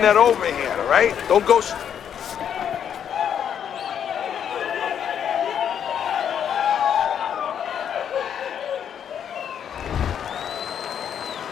that overhand, all right? Don't go...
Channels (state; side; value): quieter; right; 8.7 dB